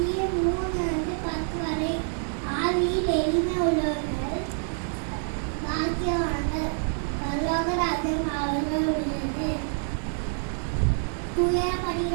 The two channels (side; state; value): left; silent; 60 dB below the other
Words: வரை ஆவியில் எளிமை உள்ளவர்கள் பாக்கியவான்கள், பரலோக ராஜ்யம் அவர்கள் உள்ளது.